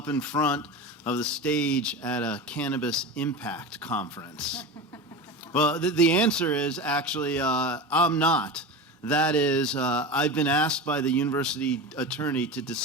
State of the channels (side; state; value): both; normal; correlation 0.26